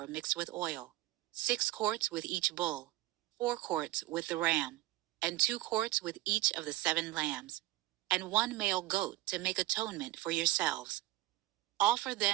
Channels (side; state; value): left; quieter; 16.9 dB